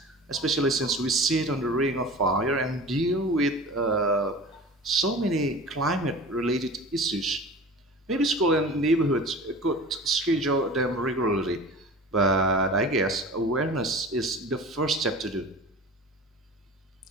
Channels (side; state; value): both; normal; correlation 0.38